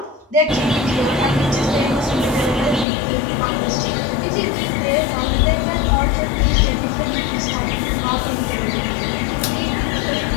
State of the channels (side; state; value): right; drops out; at 2.9 s